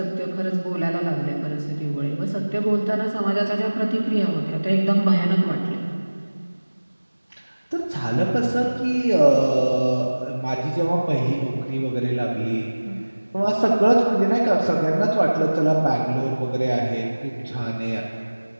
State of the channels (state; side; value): inverted; both; correlation -1.00